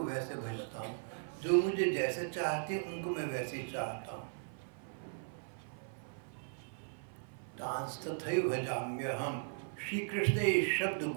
वैसे भजता हूँ, जो मुझे जैसे चाहते हैं उनको मैं वैसे चाहता हूँ। तांस तथैव भजाम्यहम्। श्री कृष्ण ने ये शब्द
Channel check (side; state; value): left; silent; 53 dB below the other